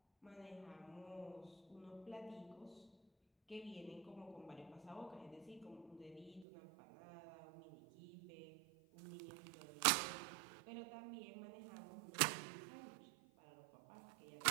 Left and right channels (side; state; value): left; drops out; at 6.5 s